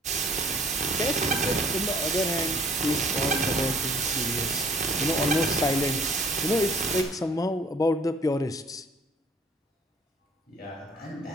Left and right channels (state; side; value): normal; both; correlation 0.56